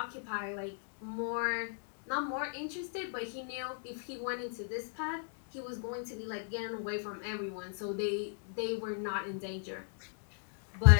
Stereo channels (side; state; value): right; silent; digital silence